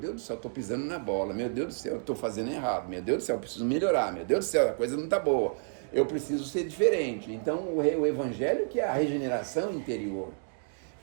do céu, eu estou pisando na bola. Meu Deus do céu, eu estou fazendo errado. Meu Deus do céu, eu preciso melhorar. Meu Deus do céu, a coisa não está boa. Eu preciso ser diferente. Então, o evangelho que é a regeneração interior.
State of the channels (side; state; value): left; silent; digital silence